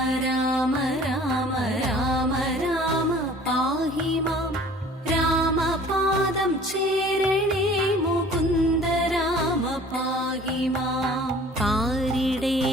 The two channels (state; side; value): normal; both; correlation 0.49